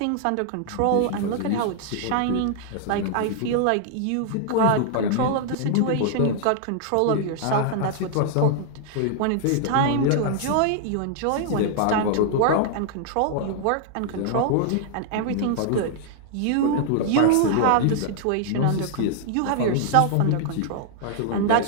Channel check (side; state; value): both; different; correlation -0.01